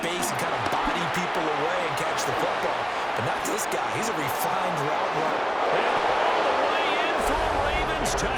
and kind of body people away and catch the football. But not this guy. He's a refined route runner. And all the way in for a Ravens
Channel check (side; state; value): both; identical; correlation 1.00